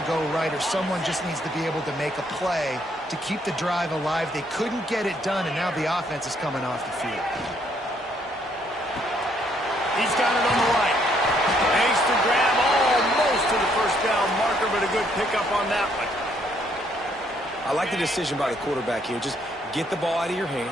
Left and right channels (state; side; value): normal; both; correlation 0.69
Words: go right, or someone just needs to be able to make a play to keep the drive alive. They couldn't get it done, and now the offense is coming off the field. He's got it on the right. Makes the grab almost to the first down marker, but a good pickup on that one. I like the decision by the quarterback here. Just get the ball out of your